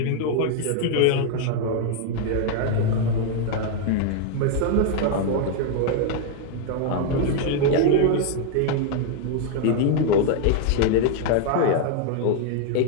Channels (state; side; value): different; both; correlation 0.00